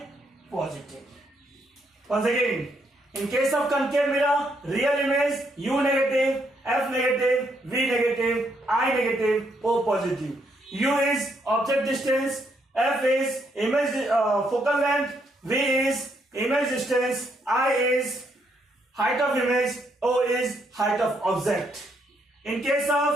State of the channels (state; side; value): normal; both; correlation 0.74